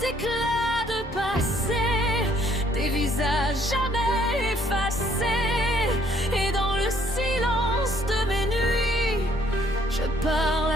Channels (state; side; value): normal; both; correlation 0.64